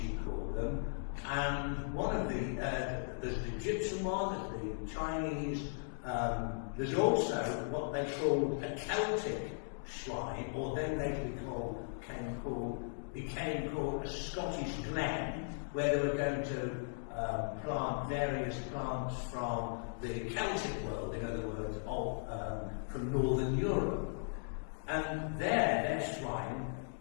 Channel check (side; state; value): right; silent; digital silence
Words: called them, and one of there's the Egyptian one, there's the Chinese, there's also what they called a Celtic shrine, or then later became called a Scottish glen, where they were going to plant various plants from the Celtic world, in other words, from Northern Europe. And their shrine